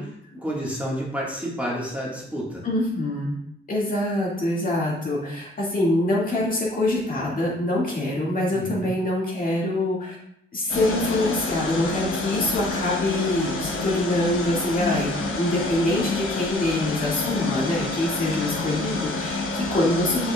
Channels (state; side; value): normal; both; correlation 0.56